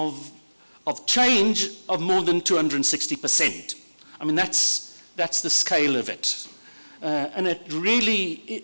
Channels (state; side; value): inverted; both; correlation -1.00